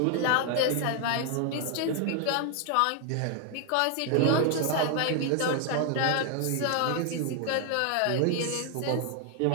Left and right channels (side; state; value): both; different; correlation 0.00